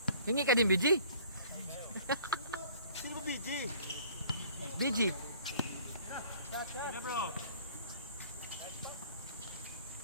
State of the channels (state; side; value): inverted; both; correlation -0.53